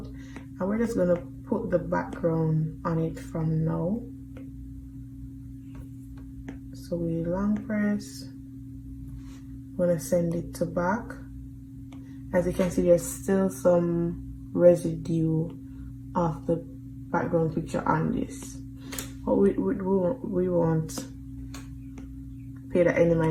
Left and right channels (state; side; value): identical; both; correlation 1.00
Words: And we're just gonna put the background on it from now. So we long press, we're gonna send it to back. As you can see, there's still some residue of the background picture on this, but we won't pay that any